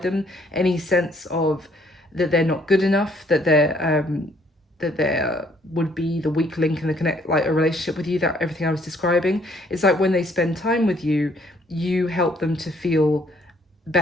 them, any sense of that they're not good enough, that there would be the weak link in the connect, like a relationship with you, that everything I was describing. It's like when they spend time with you, you help them to feel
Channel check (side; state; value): both; normal; correlation 0.64